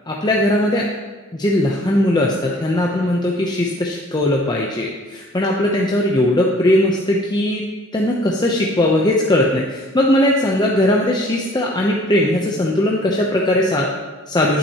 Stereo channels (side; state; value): both; normal; correlation 0.54